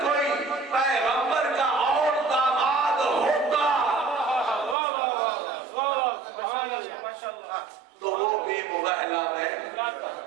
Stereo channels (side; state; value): left; drops out; at 4.8 s